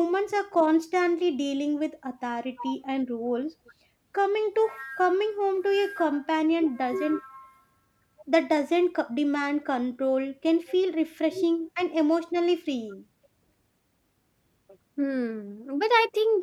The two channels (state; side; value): identical; both; correlation 1.00